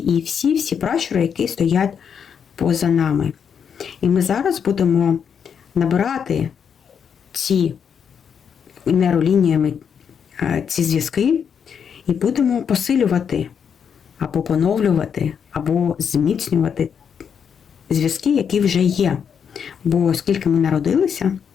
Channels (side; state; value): right; quieter; 7.3 dB